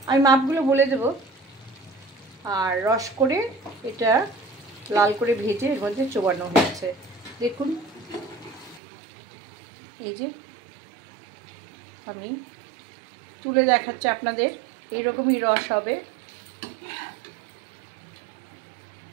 আমি মাপগুলো বলে দেব। আর রস করে এটা লাল করে ভেজে এর মধ্যে চোবানো হয়েছে। দেখুন, এই যে আমি তুলে দেখাচ্ছি আপনাদের, এরকমই রস হবে।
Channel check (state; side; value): drops out; left; at 8.8 s